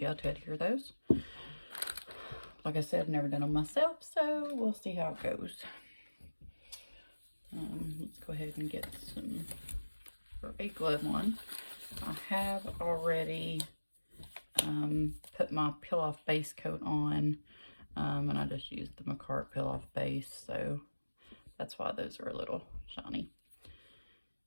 to adhere those. Like I said, I've never done them myself, so we'll see how it goes. Let's go ahead and get some for a glove one. I have already put my peel-off base coat on, and I just used the McCart peel-off base, so that's why those are a little shiny.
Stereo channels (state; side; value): inverted; both; correlation -1.00